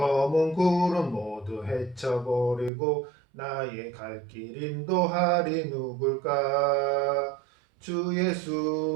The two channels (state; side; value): drops out; left; at 2.7 s